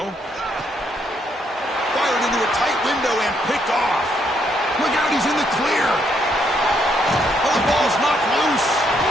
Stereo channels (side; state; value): both; normal; correlation 0.73